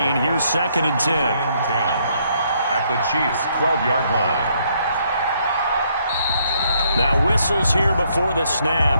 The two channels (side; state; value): both; inverted; correlation -0.70